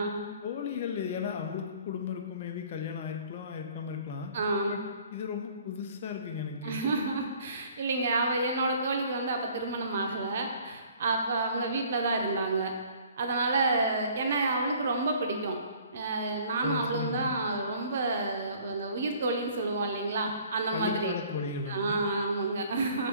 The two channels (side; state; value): both; inverted; correlation -0.54